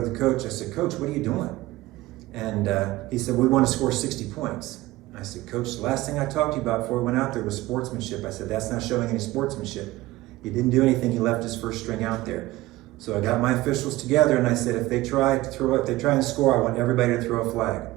the coach, I said, Coach, what are you doing? And he said, we want to score 60 points. I said, Coach, the last thing I talked to you about before we went out there was sportsmanship. I said, that's not showing any sportsmanship. He didn't do anything, he left his first string out there. So I got my officials together and I said, if they try and score, I want everybody to throw a flag.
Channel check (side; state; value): left; quieter; 18.0 dB